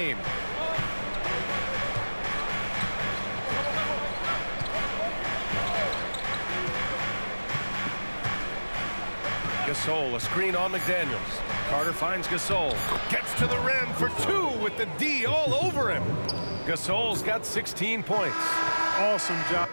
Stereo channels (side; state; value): both; inverted; correlation -1.00